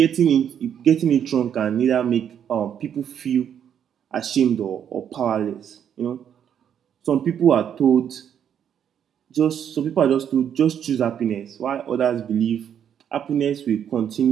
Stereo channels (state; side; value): quieter; left; 8.9 dB